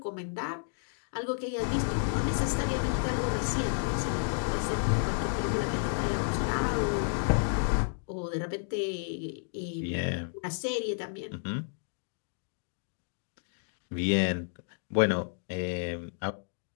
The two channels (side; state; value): right; silent; digital silence